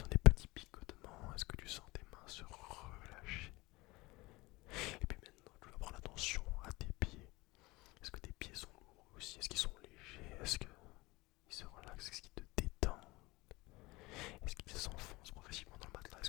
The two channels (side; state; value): right; quieter; 21.9 dB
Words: des petits picotements? Est-ce que tu sens tes mains se relâcher?